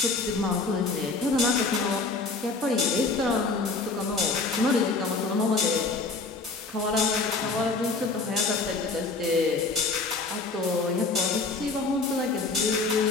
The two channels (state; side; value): quieter; right; 3.8 dB